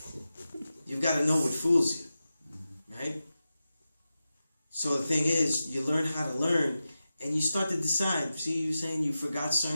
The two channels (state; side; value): inverted; both; correlation -0.93